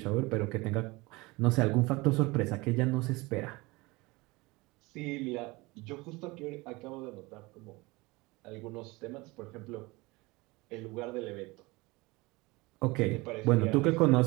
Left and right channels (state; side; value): quieter; left; 23.3 dB